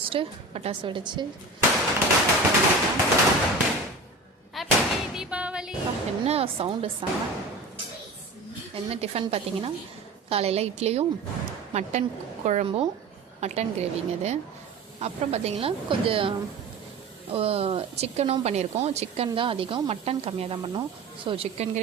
பட்டாசு வெடிச்சு ஹாப்பி தீபாவளி. என்ன சவுண்டு சாங். என்ன டிஃபன் பார்த்தீங்கன்னா, காலையில் இட்லியும் மட்டன் குழம்பும் மட்டன் கிரேவிங்க இது. அப்புறம் பார்த்திங்கன்னா கொஞ்சம் சிக்கனும் பண்ணியிருக்கோம். சிக்கன் தான் அதிகம், மட்டன் கம்மியாக தான் பண்ணோம். ஸோ சிக்கன்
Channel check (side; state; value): left; quieter; 3.3 dB